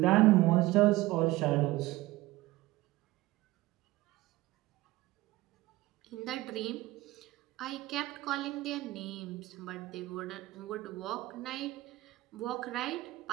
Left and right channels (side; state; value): left; quieter; 18.5 dB